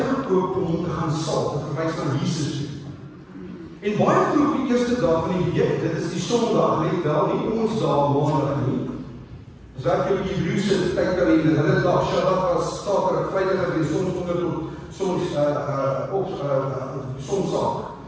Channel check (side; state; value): both; identical; correlation 1.00